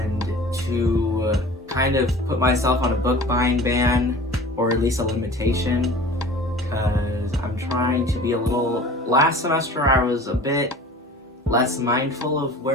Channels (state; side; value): normal; both; correlation 0.42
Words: to kind of put myself on a book buying ban, or at least a limitation, because I'm trying to be a little... Last semester I was a bit less mindful of